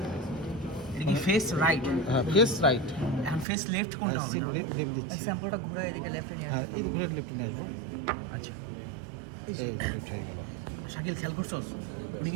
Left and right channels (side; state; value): left; drops out; at 3.5 s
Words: এটা কি ফেস রাইট? হ্যাঁ ফেস রাইট। এখন ফেস লেফট কোনটা হবে? লেফট দিচ্ছি, স্যাম্পলটা ঘুরে এদিকে লেফটে নিয়ে হ্যাঁ এই ঘুরে লেফট নিয়ে আসবো। আচ্ছা, এই লেফট হয়ে গেল। শাকিল খেয়াল করছস, উনি